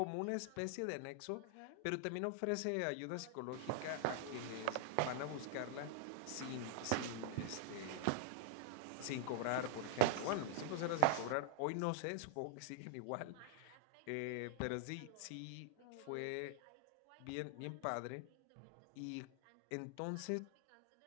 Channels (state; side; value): different; both; correlation -0.01